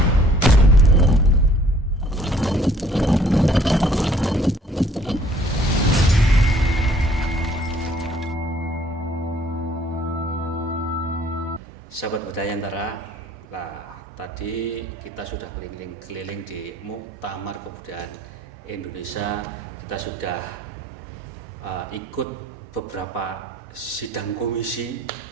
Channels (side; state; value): both; normal; correlation 0.58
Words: Sahabat Budaya Antara, nah tadi kita sudah keliling-keliling di Muktamar Kebudayaan Indonesia. Kita sudah ikut beberapa sidang komisi